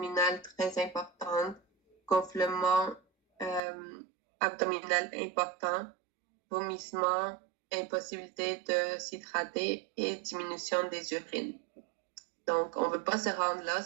très importante, gonflement abdominal important, vomissement, impossibilité de s'hydrater et diminution des urines. Donc, on ne veut pas se rendre là,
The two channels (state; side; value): drops out; left; at 3.6 s